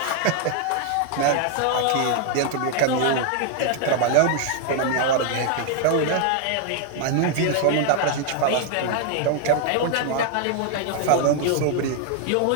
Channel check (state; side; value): different; both; correlation 0.00